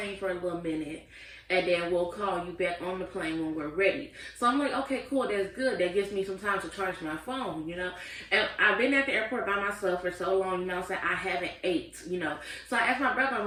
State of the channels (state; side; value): identical; both; correlation 1.00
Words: for a little minute. and then we'll call you back on the plane when we're ready. So I'm like, okay, cool, that's good. That gives me some time to charge my phone, you know. And I've been at the airport by myself for so long, you know, so I haven't ate, you know. So I asked my brother, I'm